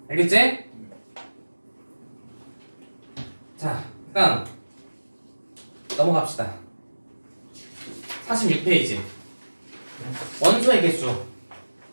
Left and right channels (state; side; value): inverted; both; correlation -1.00